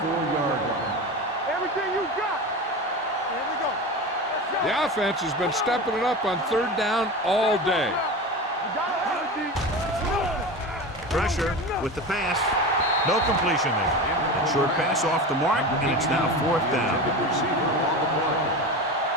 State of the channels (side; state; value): both; normal; correlation 0.27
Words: line. Everything you got. Here we go. The offense has been stepping it up on 3rd down all day. You got it, Pressure with the pass. No completion there. A short pass off the mark, and it's now 4th down. Receiver on the play.